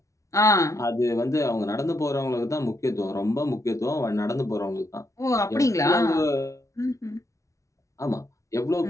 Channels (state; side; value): late; right; 0.15 ms